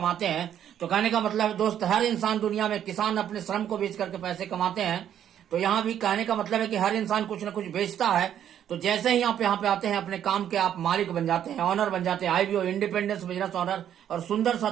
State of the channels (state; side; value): quieter; left; 10.0 dB